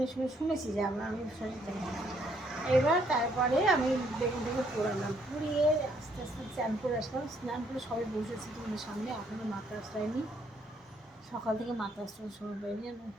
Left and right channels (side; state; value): both; normal; correlation 0.69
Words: সময় শুনেছি যে আমি শরীর জানি না। এবার তারপরে আমি বেগুনটাকে পোড়ালাম, পুড়িয়ে আস্তে আস্তে স্নান করে আসলাম। স্নান করে সবাই বসেছি তোমাদের সামনে, এখনও মাথা আসলাইনি। সকাল থেকে মাথা আসতে সময় পাইনি,